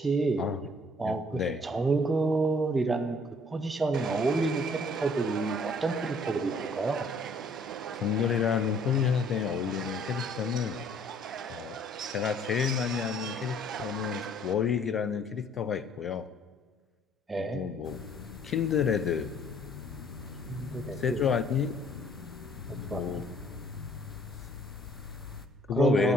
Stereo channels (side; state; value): both; normal; correlation 0.59